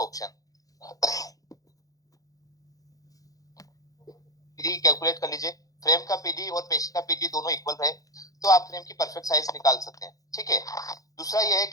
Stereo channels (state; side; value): late; right; 0.17 ms